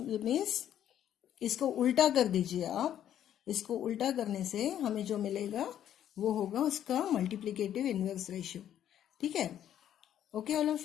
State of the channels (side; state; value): right; quieter; 10.6 dB